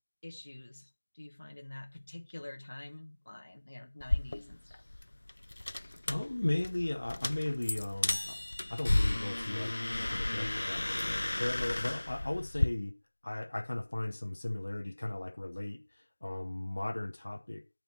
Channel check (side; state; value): both; inverted; correlation -1.00